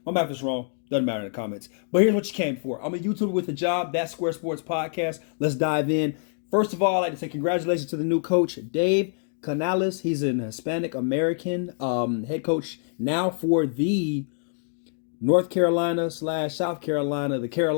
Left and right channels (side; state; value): right; silent; 61 dB below the other